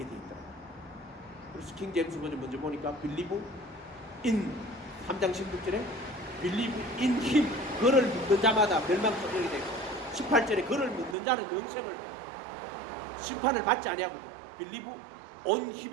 돼 있더라. 그래서 킹 제임스 버전 먼저 보니까 believe in 3장 16절에 believe in him, 그를 믿는 자마다 멸망치 않게 되고 18절에 그를 믿는 자는 영생을 심판을 받지 아니하고 believe on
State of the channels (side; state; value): left; drops out; at 11.2 s